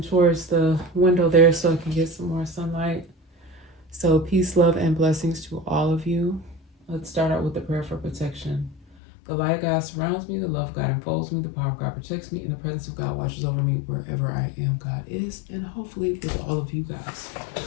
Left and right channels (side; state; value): right; drops out; at 9.0 s